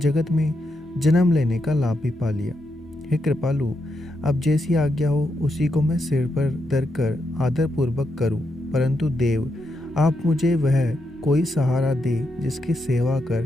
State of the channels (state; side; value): normal; both; correlation 0.83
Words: में जन्म लेने का लाभ भी पा लिया। हे कृपालु, अब जैसी आज्ञा हो उसी को मैं सिर पर धर कर आदर पूर्वक करूं, परंतु देव, आप मुझे वह कोई सहारा दे जिसकी सेवा कर